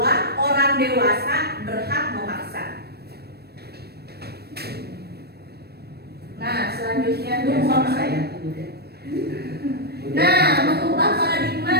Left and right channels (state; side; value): late; left; 0.47 ms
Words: orang dewasa berhak memaksa. Nah, selanjutnya mengubah